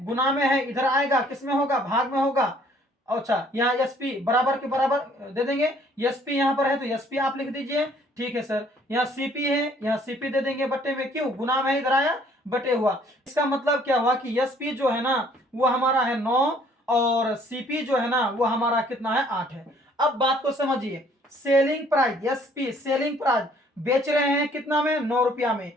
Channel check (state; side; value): normal; both; correlation 0.60